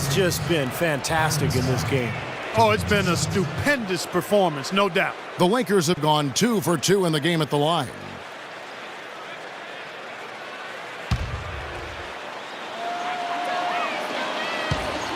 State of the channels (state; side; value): identical; both; correlation 1.00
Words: just been fantastic in this game. Oh, it's been a stupendous performance, no doubt. The Lakers have gone 2 for 2 in the game at the line.